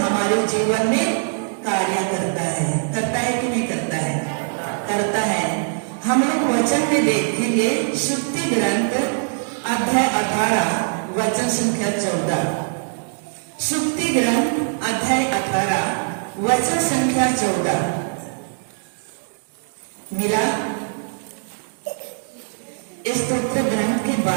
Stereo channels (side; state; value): left; silent; digital silence